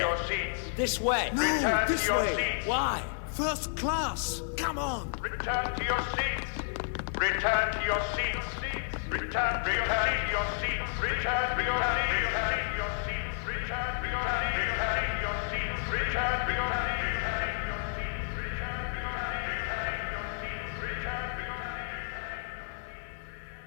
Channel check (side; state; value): right; silent; digital silence